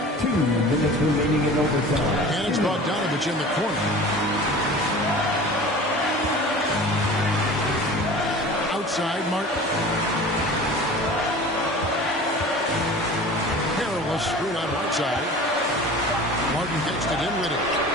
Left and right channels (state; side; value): normal; both; correlation 0.40